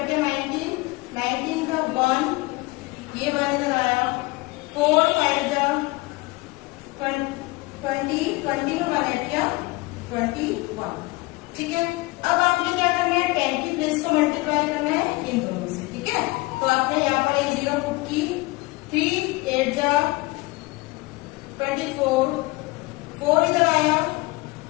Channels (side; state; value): right; quieter; 22.7 dB